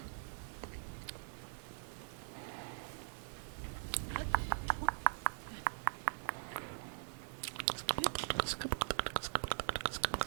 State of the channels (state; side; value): silent; left; 50 dB below the other